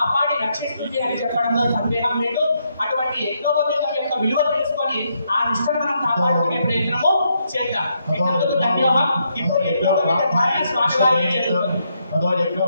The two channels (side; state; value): both; inverted; correlation -0.77